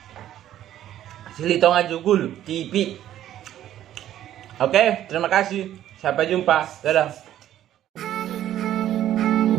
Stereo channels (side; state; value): left; quieter; 12.1 dB